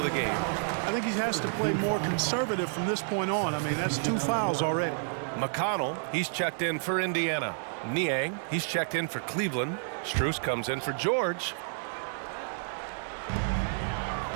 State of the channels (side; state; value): left; silent; digital silence